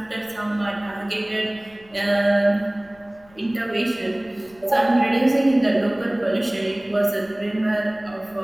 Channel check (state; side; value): noise; left; rumble, 28 dB below the sound